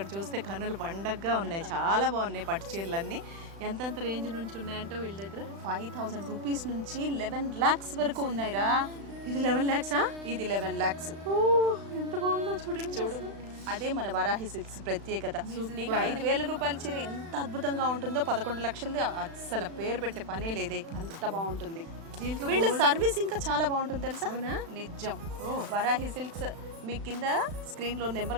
చూస్తే కన్నులు పండగగా ఉన్నాయి, చాలా బాగున్నాయి పట్టు చీరలన్నీ. ఎంతెంత రేంజ్ నుంచి ఉన్నాయంటే వీళ్ళ దగ్గర 5,000 రూపీస్ నుంచి 11 lakhs వరకు ఉన్నాయిరా. ఇది 11 lakhs? ఇది 11 lakhs. ఎంత బాగుందో చూడండి. చూడు, అదే మన వారాహి సిల్క్స్ ప్రత్యేకత. నీకు 5,000 రూపాయల చీర ఎంత అద్భుతంగా ఉంటుందో 11 లక్షలది అస్సలు పేరు పెట్టే పనే లేదే, అంత బాగుంటుంది. వీళ్ళ సర్వీస్ ఇంకా చాలా బాగుంటుంది తెలుసా. నిజం. వారాహి సిల్క్స్ మీ కింద స్క్రీన్ లో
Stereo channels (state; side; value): late; left; 36 ms